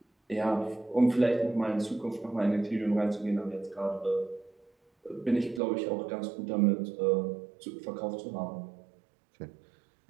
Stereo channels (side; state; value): left; drops out; at 5.6 s